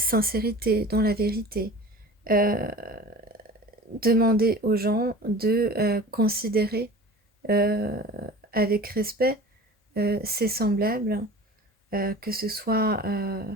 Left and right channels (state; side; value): normal; both; correlation 0.39